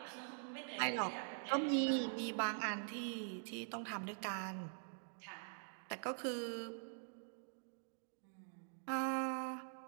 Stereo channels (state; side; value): silent; left; digital silence